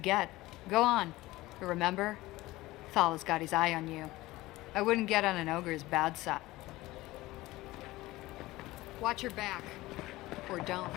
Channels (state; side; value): quieter; right; 18.5 dB